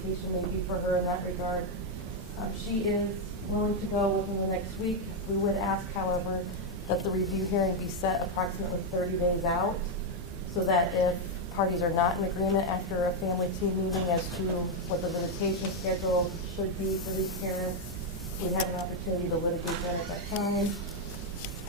may be for her in that regard. She is willing to go within the next week. We would ask, however, that the review hearing be set approximately 30 days out, so that if parties are not in agreement after a family team meeting as to what the visitation schedule should be for these parents, we have an opportunity to litigate that at that time.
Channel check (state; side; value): normal; both; correlation 0.01